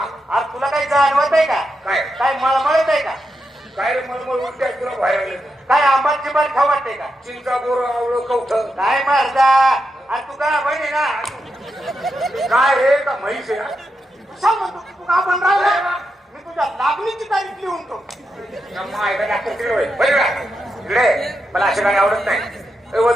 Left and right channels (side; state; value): both; normal; correlation 0.86